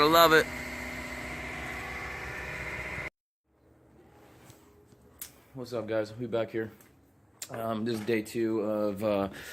love it. What's up, guys? We back here. This is day 2 of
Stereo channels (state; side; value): identical; both; correlation 1.00